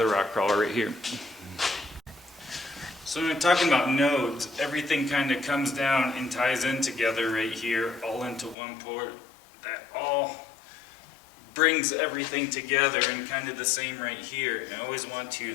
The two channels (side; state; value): right; drops out; at 8.6 s